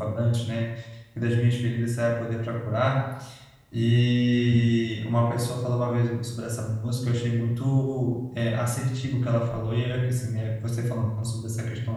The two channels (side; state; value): both; identical; correlation 1.00